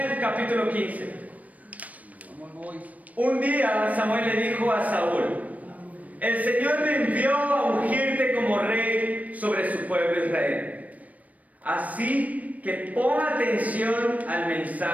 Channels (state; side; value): late; left; 0.071 ms